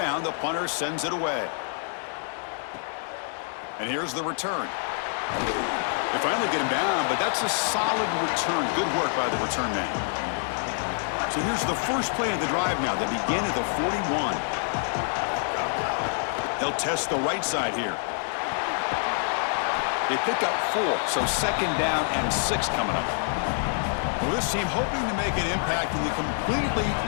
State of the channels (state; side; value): silent; right; 60 dB below the other